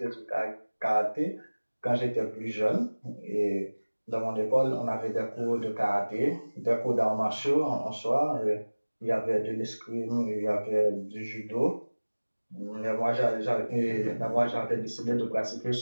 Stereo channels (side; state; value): both; inverted; correlation -1.00